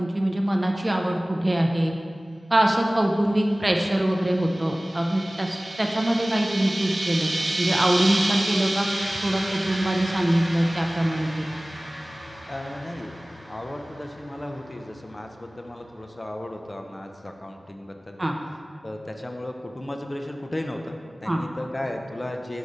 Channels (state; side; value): normal; both; correlation 0.98